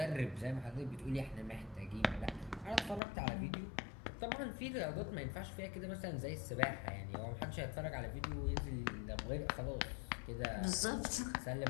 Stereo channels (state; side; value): drops out; right; at 3.0 s